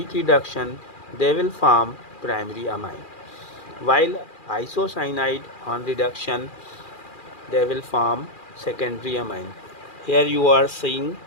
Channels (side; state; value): right; late; 2.4 ms